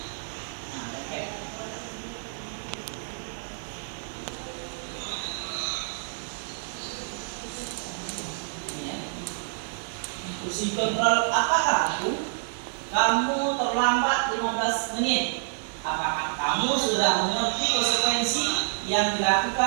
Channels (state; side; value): silent; left; 59 dB below the other